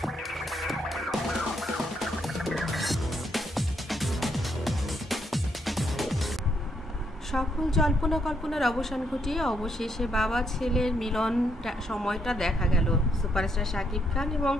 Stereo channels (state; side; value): normal; both; correlation 0.75